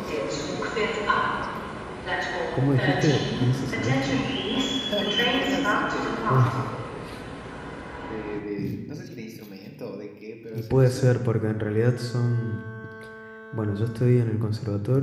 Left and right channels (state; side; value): identical; both; correlation 1.00